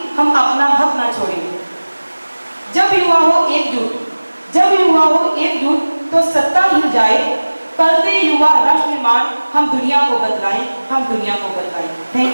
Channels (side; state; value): both; inverted; correlation -1.00